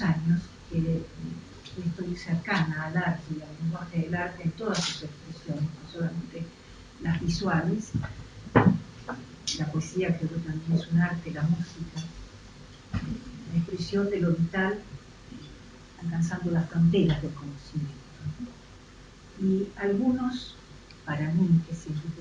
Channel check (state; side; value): identical; both; correlation 1.00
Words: años que estoy cercana al arte y al lenguaje del arte en todas sus expresiones, no solamente las visuales. La poesía creo que también es un arte, la música, la expresión de lo vital, alcanzando las fronteras del conocimiento. Y algunos, para mí, que siempre